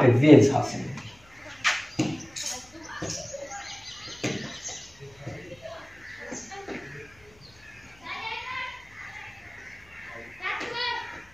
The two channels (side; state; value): left; noise; hum, 28 dB below the sound